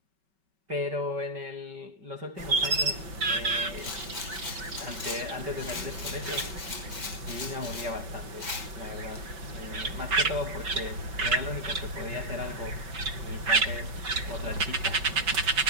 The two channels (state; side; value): late; left; 5.3 ms